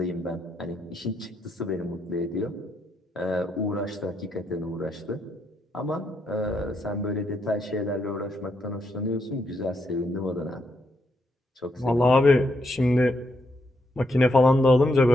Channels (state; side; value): normal; both; correlation 0.79